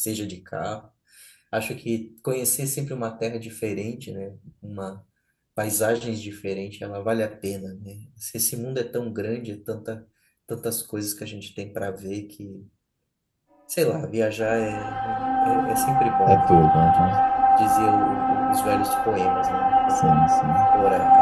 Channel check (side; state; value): both; identical; correlation 1.00